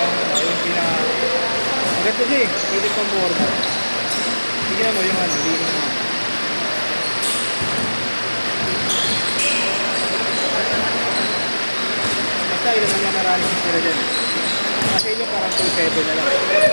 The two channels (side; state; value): both; inverted; correlation -1.00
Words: yung pinaka... Maganda siya eh, pwede pang board. Tignan mo yung ano, hindi naman. Basta ilan naman maraming sila dyan. Kasi yun parang 2-7 na lang.